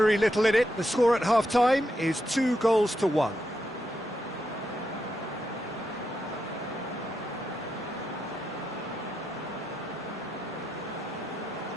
little in it. The score at half-time is 2-1.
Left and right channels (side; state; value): both; normal; correlation 0.84